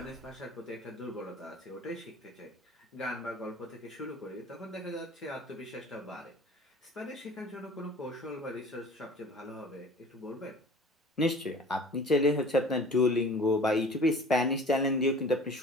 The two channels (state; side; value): normal; both; correlation 0.45